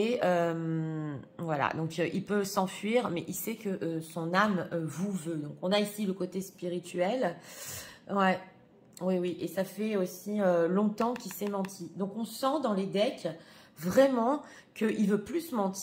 voilà, donc il peut s'enfuir, mais il sait que son âme vous veut. Donc on a ici le côté spirituel. Ouais, oui, oui. Et ça fait aussi longtemps qu'il s'est menti. Donc on sent dans les decks vraiment qu'il veut plus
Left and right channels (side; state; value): both; identical; correlation 1.00